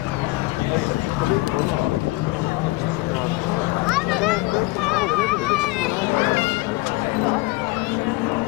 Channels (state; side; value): quieter; right; 21.6 dB